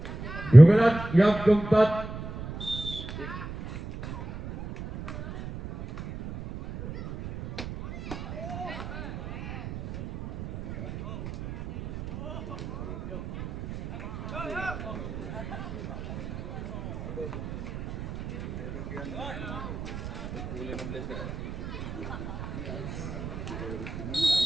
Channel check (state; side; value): noise; right; rumble, 9 dB below the sound